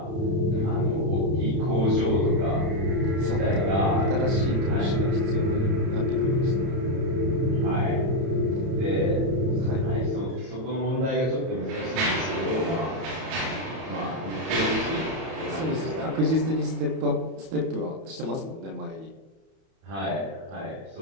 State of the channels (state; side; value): late; left; 31 ms